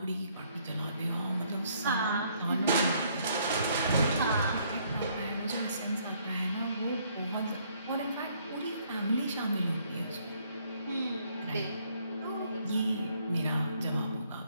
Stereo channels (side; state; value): both; inverted; correlation -0.67